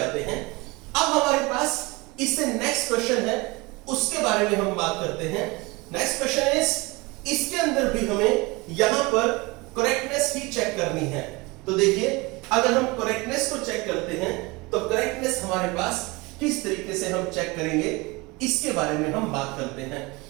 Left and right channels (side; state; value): left; quieter; 24.6 dB